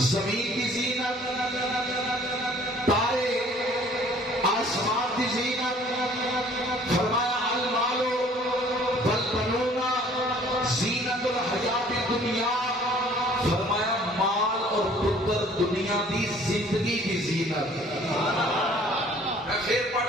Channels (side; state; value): both; normal; correlation 0.55